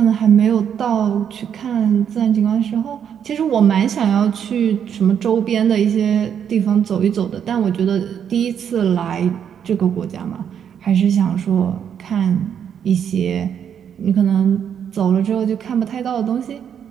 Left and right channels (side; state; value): left; quieter; 8.4 dB